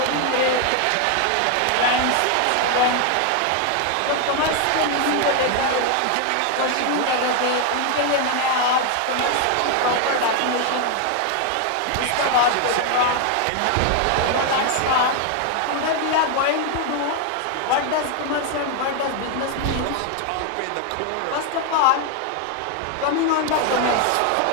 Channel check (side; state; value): both; different; correlation 0.01